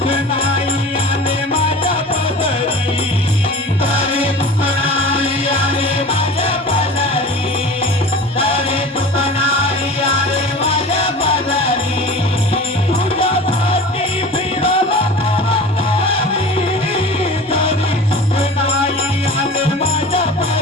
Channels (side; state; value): both; normal; correlation 0.38